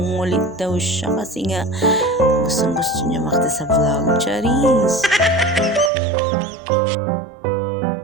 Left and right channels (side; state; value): left; drops out; at 5.9 s